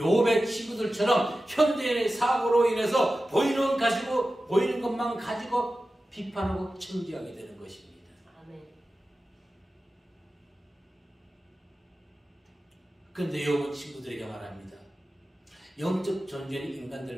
친구들처럼 현대인의 사고로 인해서 보이는 것만 가지고 비판하고 청지하게 되는 것입니다. 그런데 욥은 친구들에게 말합니다. 영적 존재는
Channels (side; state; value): both; normal; correlation 0.94